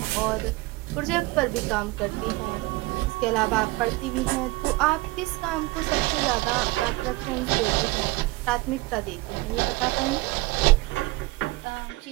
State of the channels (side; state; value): left; quieter; 21.6 dB